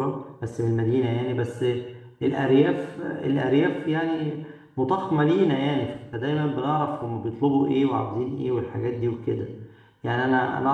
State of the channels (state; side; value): identical; both; correlation 1.00